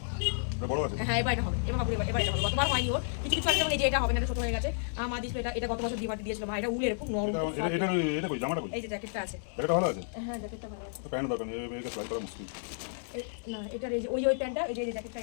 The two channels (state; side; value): silent; right; digital silence